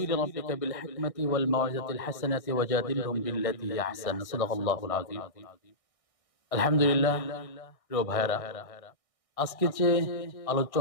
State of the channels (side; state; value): right; late; 1.6 ms